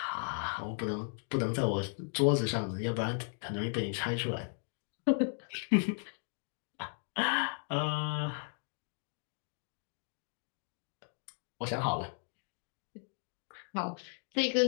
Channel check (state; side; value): silent; right; 54 dB below the other